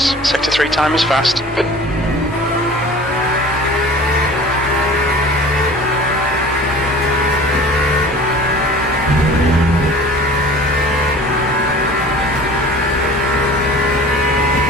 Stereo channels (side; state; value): both; normal; correlation 0.43